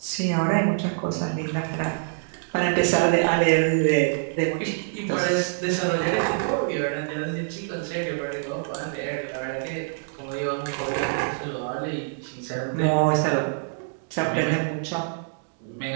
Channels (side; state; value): left; silent; digital silence